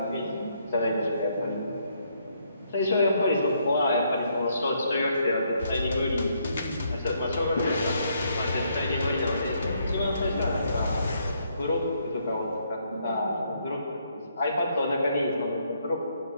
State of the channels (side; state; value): both; inverted; correlation -0.72